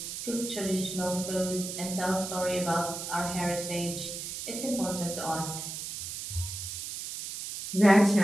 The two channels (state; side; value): noise; right; hiss, 7 dB below the sound